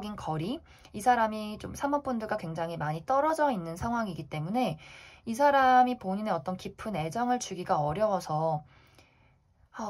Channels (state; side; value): identical; both; correlation 1.00